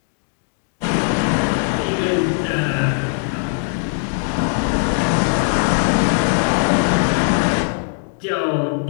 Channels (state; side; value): silent; right; digital silence